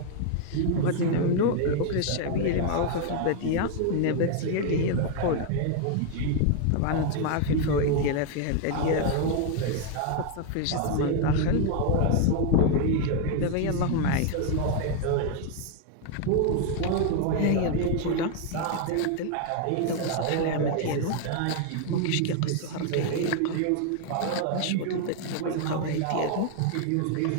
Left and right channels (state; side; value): different; both; correlation 0.00